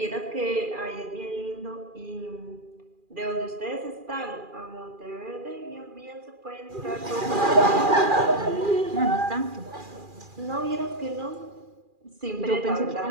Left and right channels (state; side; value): late; left; 2.4 ms